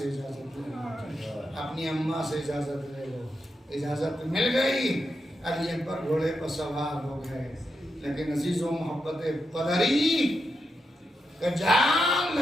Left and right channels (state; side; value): normal; both; correlation 0.86